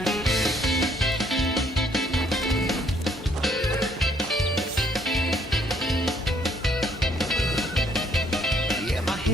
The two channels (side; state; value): both; normal; correlation 0.66